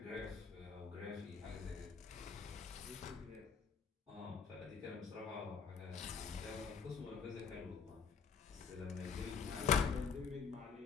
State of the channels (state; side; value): quieter; right; 6.0 dB